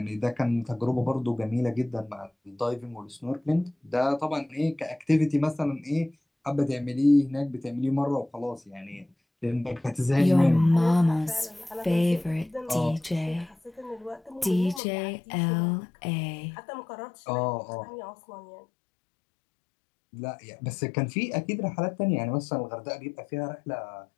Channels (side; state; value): right; drops out; at 14.8 s